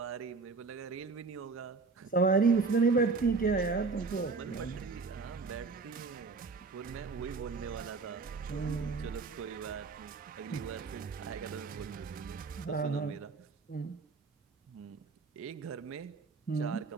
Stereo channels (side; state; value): left; quieter; 4.4 dB